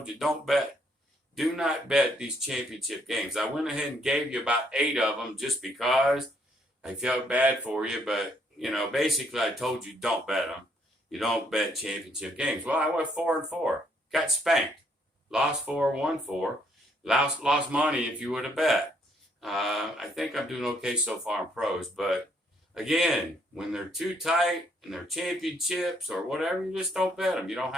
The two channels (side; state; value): both; normal; correlation 0.69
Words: you, do not bet these championship games. I went ahead and gave you about 8 of them just because I felt bad for you, but, basically I told you don't bet them. You don't bet championship games. Well, I went 4-4, got spanked. Lost 4, won 4. Lost money if you would have bet. I think I'm doing okay so far in pros, but again, when they're too tight and they're championships or whatever, you just don't bet them. You don't